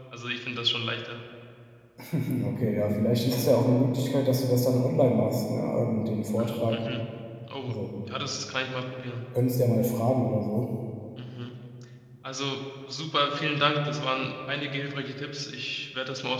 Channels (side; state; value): both; identical; correlation 1.00